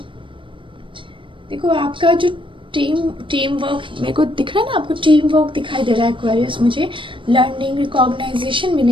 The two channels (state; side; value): late; left; 0.25 ms